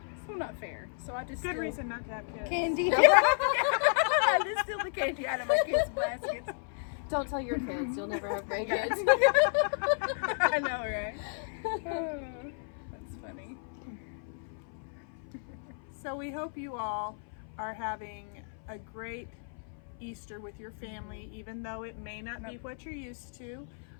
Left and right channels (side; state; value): right; silent; 56 dB below the other